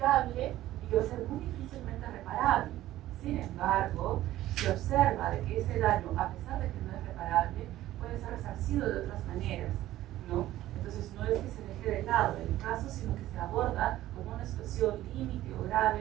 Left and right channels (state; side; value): quieter; left; 14.6 dB